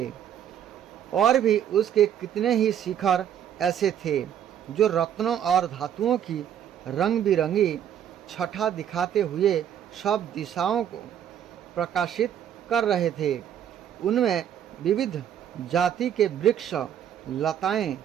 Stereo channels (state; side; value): quieter; left; 9.7 dB